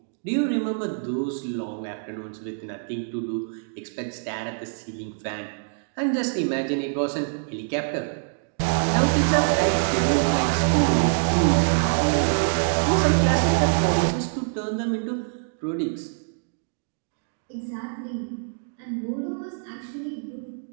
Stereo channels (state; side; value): silent; left; digital silence